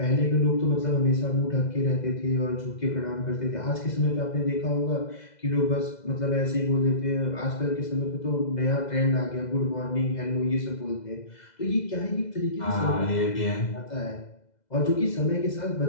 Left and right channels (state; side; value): late; right; 2.0 ms